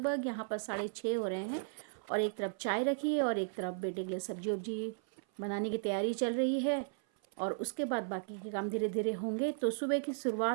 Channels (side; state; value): left; silent; 54 dB below the other